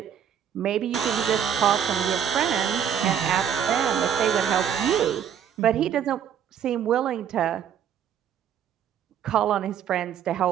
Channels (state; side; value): quieter; left; 8.8 dB